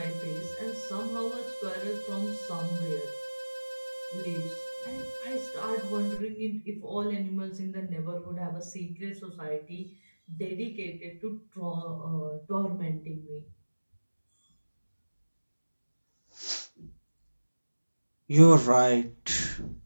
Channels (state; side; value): inverted; both; correlation -1.00